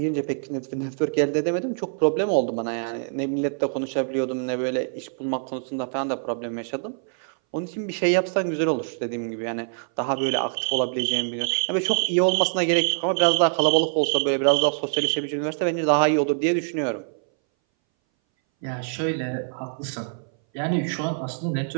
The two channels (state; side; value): silent; left; 60 dB below the other